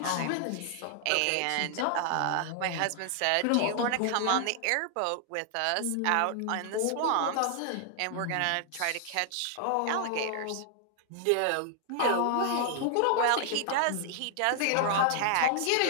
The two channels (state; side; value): different; both; correlation 0.00